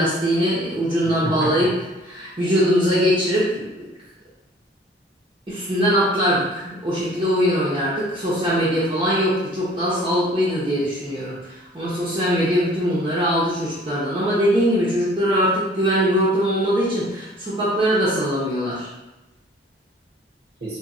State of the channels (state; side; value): normal; both; correlation 0.52